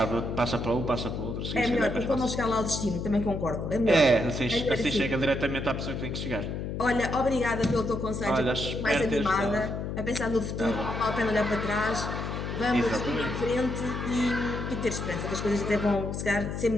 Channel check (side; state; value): left; noise; hum, 4 dB below the sound